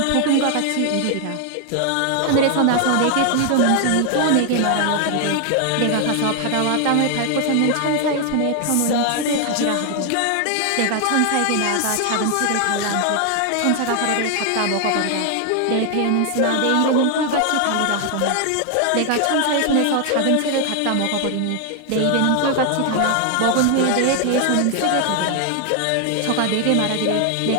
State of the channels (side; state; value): both; different; correlation 0.00